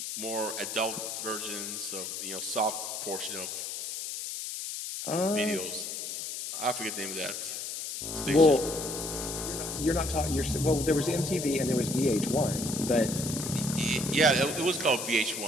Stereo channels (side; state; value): left; noise; hiss, 5 dB below the sound